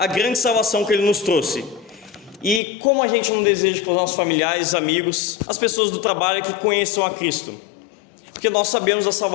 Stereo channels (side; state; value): right; drops out; at 2.6 s